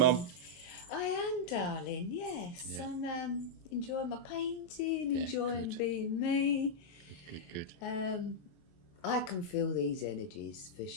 I am, darling. Yes, Yeah. I'm enjoying my painting, Yeah, enjoying good. being me. Good. I can feel these energies for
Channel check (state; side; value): late; right; 23 ms